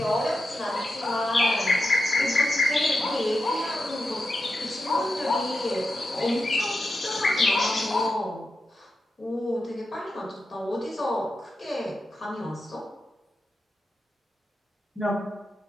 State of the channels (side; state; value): both; normal; correlation 0.89